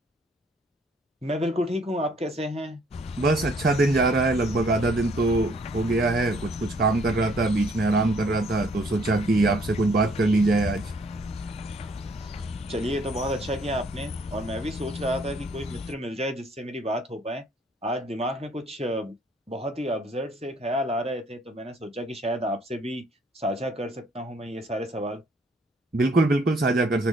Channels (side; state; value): both; normal; correlation 0.63